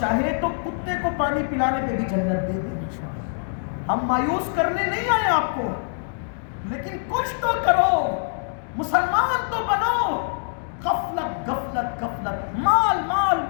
تو کتے کو پانی پلانے پہ بھی جنت دے دے۔ ہم مایوس کرنے نہیں آئے آپ کو، لیکن کچھ تو کرو، مسلمان تو بنو۔ غفلت غفلت غفلت، مال مال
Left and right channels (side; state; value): right; silent; digital silence